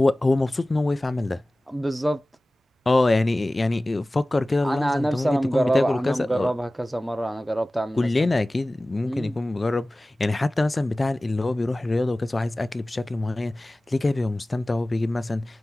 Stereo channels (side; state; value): both; normal; correlation 0.97